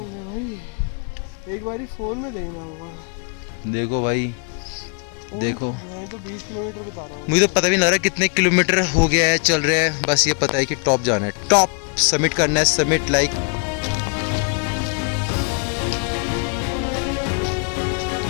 भाई, एक बारी फोन में देखना होगा। देखो भाई, देखो मैं तो 20 किलोमीटर बता रहा हूँ। मुझे तो पता भी नहीं लग रहा कितने किलोमीटर हो गया है, चल रहे हैं। बस ये पता है कि टॉप जाना है, टॉप समिट करना है, समिट लाइक।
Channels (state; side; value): quieter; right; 38.6 dB